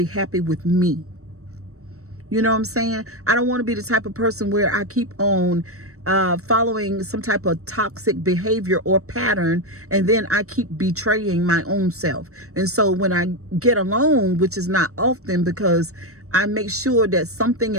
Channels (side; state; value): left; late; 0.65 ms